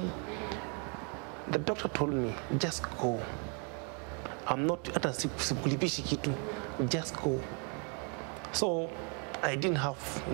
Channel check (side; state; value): left; quieter; 36.1 dB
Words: The doctor told me, just go. I'm not, just go. So I didn't have